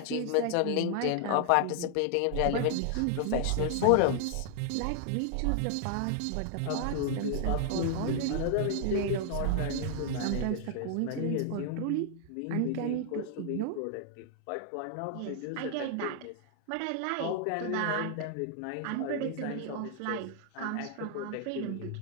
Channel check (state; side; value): different; both; correlation 0.00